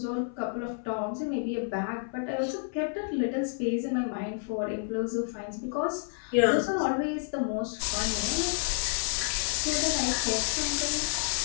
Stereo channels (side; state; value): right; silent; 58 dB below the other